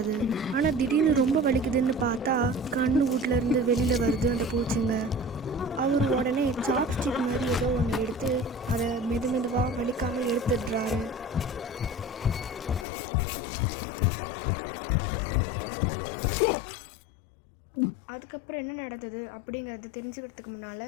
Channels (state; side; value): drops out; right; at 12.9 s